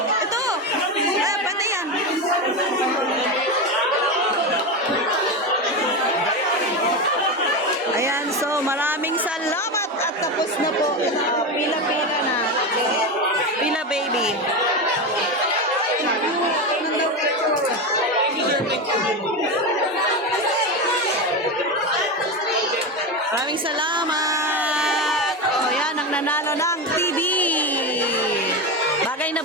Ito. Pwede yan. Ayan, so maraming salamat at tapos na po. Pila-pila na. Pila baby. Maraming salamat. O yan, ang nanalo ng TV. Bagay na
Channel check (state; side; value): normal; both; correlation 0.17